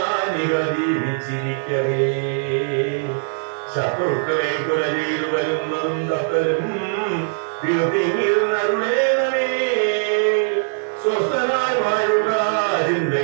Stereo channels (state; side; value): silent; left; 60 dB below the other